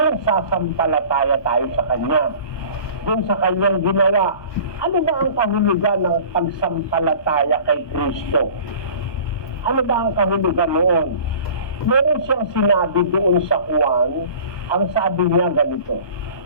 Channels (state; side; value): late; right; 1.2 ms